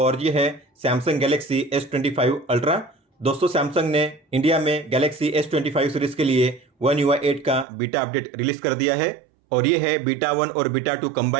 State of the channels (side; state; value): left; drops out; at 7.7 s